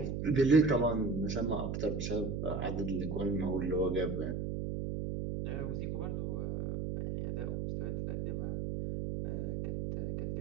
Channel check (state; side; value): noise; right; hum, 2 dB below the sound